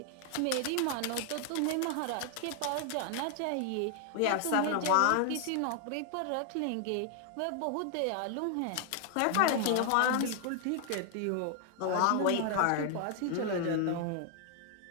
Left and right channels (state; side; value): different; both; correlation 0.00